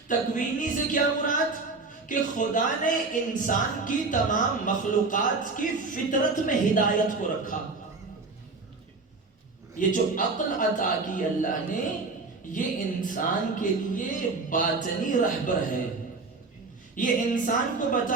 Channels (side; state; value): left; quieter; 3.9 dB